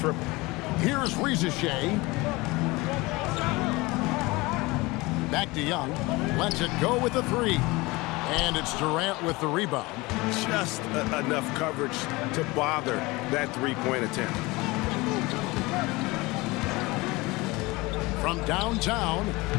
Here's Rizache. Back to Young. Lets it go with the three. And it's Durant with the rebound. Just enough coverage to bother that three-point attempt. From downtown.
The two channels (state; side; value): quieter; right; 22.6 dB